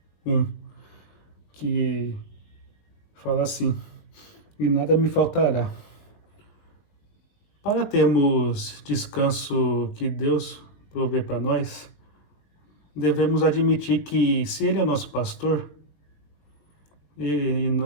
1, que fala assim: E nada me faltará. Para termos descanso que Deus provê para nós, devemos admitir que, se Ele é o nosso pastor,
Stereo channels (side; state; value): right; late; 20 ms